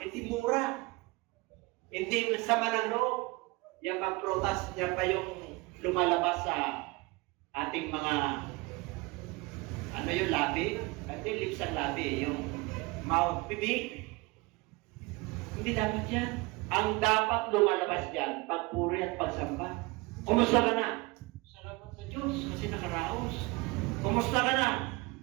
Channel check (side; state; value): left; quieter; 24.3 dB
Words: Hindi mura. Hindi sama ng loob. Yan pang prutas, yan pa yung lumalabas sa ating mga, yung labi? Hindi lips ang labi, yung mouth, bibig. Hindi dapat yan. Ang dapat lumalabas dyan, pagpuri at pagsamba. Kumusta ka na? Salamat sa Diyos kasi nakaraos. Kumusta ka na?